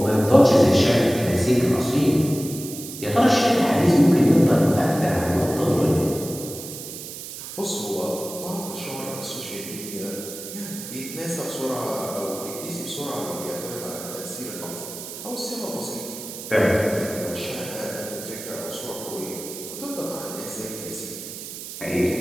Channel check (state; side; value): noise; right; hiss, 10 dB below the sound